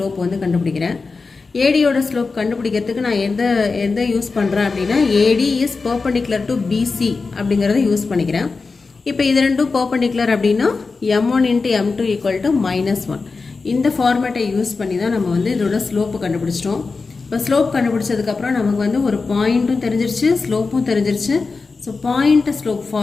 வந்து கண்டுபிடிக்கிறேன். ஏடியோட ஸ்லோப் கண்டுபிடிக்கிறதுக்கு நான் எந்த யூஸ் பண்ணுறேன் அப்படின்னா, AD is perpendicular to BC அப்படிங்கிறத யூஸ் பண்ணிக்கிறேன். இப்போ இது ரெண்டும் பர்பண்டிகுலர் அப்படின்னா m1 into m2 equal to -1. இந்த ஃபார்மேட்டை யூஸ் பண்ணி தான் நம்ம வந்து இதோட ஸ்லோப்பு கண்டுபிடிச்சிட்டோம். இப்போ ஸ்லோப் கண்டுபிடிச்சதுக்கப்புறம் நமக்கு வந்து ஒரு பாயிண்ட்டும் தெரிஞ்சிருச்சு, ஸ்லோப்பும் தெரிஞ்சிருச்சு. So point slope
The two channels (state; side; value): quieter; right; 4.3 dB